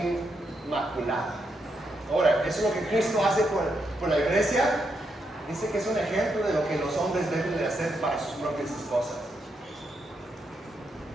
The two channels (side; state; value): both; normal; correlation 0.81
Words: inmaculada. Ahora, ¿eso es lo que Cristo hace por la iglesia? Dice que es un ejemplo de lo que los hombres deben de hacer para sus propias esposas.